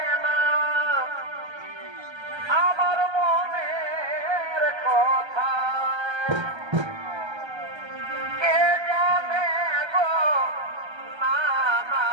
না আমার মনের কথা, কে জানে গো না না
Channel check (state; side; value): late; left; 1.3 ms